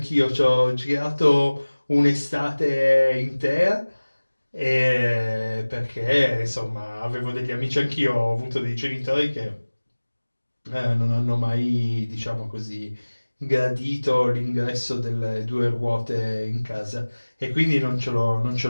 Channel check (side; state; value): both; inverted; correlation -1.00